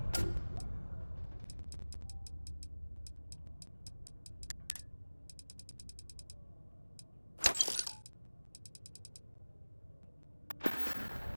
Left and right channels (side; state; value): both; inverted; correlation -1.00